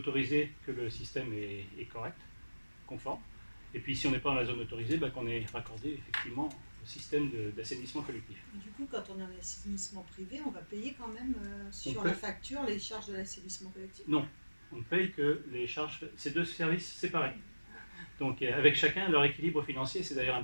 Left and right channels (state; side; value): inverted; both; correlation -1.00